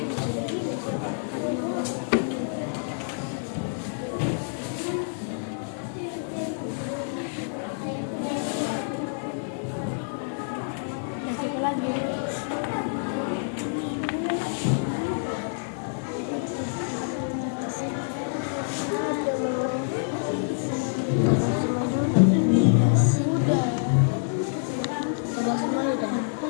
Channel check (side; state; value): right; silent; 57 dB below the other